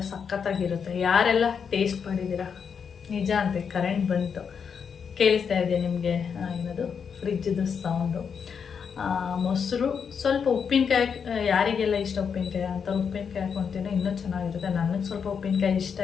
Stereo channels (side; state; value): right; quieter; 6.6 dB